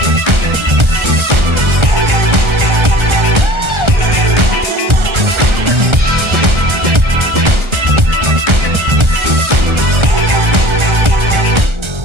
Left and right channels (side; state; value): left; late; 1.3 ms